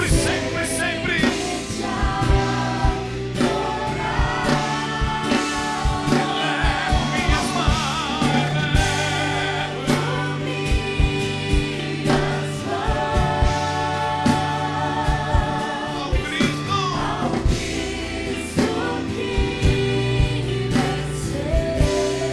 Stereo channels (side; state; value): both; identical; correlation 1.00